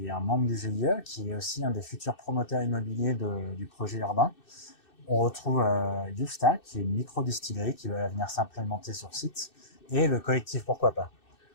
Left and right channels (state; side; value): late; right; 2.6 ms